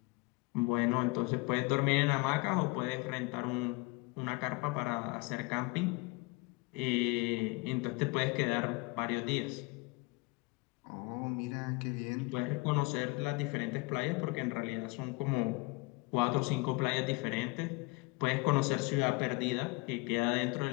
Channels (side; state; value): right; quieter; 25.1 dB